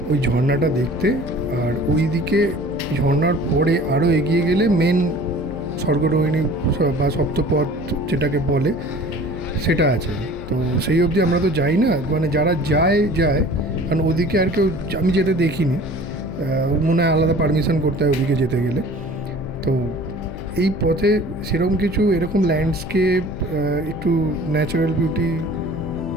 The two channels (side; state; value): left; noise; hum, 12 dB below the sound